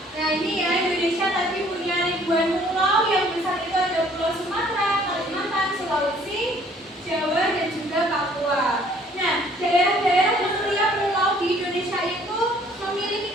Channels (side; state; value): both; normal; correlation 0.58